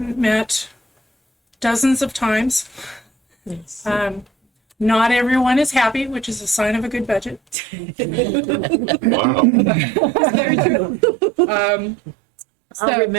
met dozens of times. Yes. Not everyone is happy, which is a sign of a good budget. Wow. Very true. I'll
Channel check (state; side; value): drops out; left; at 7.6 s